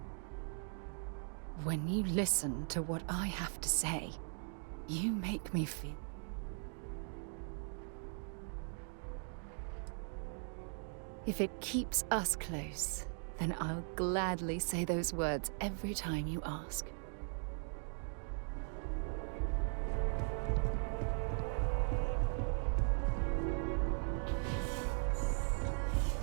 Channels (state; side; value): silent; left; 51 dB below the other